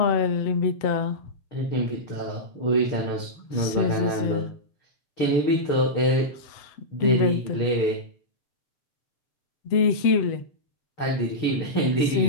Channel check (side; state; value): right; late; 7.8 ms